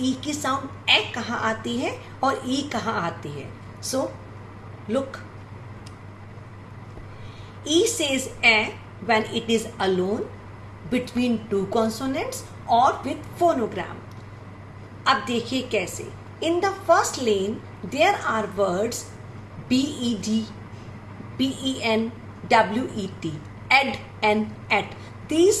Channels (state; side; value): identical; both; correlation 1.00